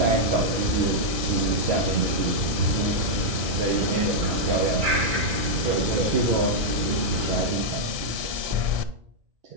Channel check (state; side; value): late; left; 1.3 ms